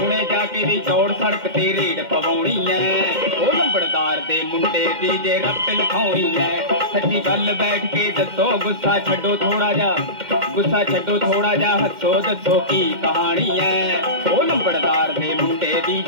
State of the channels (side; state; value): left; late; 2.1 ms